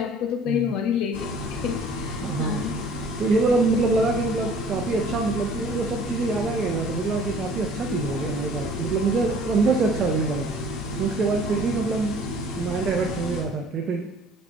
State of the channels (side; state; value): both; normal; correlation 0.51